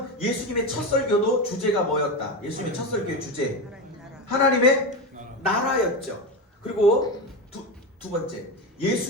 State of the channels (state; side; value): normal; both; correlation 0.18